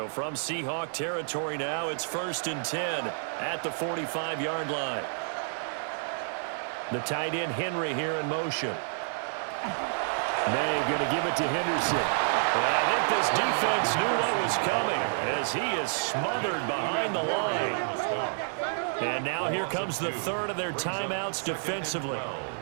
from Seahawk territory now, it's 1st and 10 at the 45-yard line. The tight end Henry here in motion. May going to give it to Henderson. And I think this defense knew what was coming as he is smothered behind the line. And now here comes the third of their timeouts defensively.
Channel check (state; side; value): silent; left; digital silence